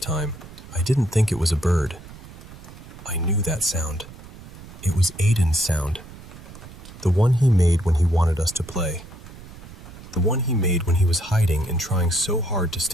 I didn't think it was a bird. I knew that sound. It was Aiden's sound. The one he made when he wanted us to play. The one he made when he was hiding and trying so hard to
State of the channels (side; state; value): right; noise; rumble, 16 dB below the sound